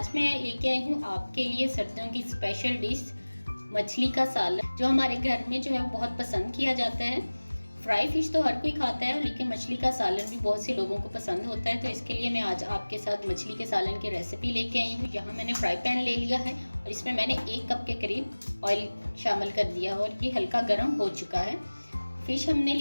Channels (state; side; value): inverted; both; correlation -1.00